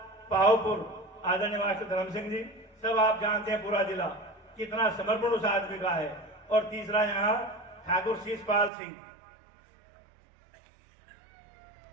पाहोपुर, आदरणीय मास्टर धर्म सिंह जी, सब आप जानते हैं पूरा जिला कितना समर्पण उस आदमी का है। और तीसरा यहाँ ठाकुर शीशपाल सिंह।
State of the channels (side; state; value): left; drops out; at 8.7 s